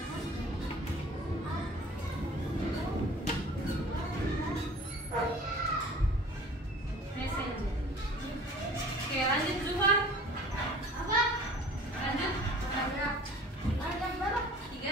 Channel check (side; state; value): both; normal; correlation 0.46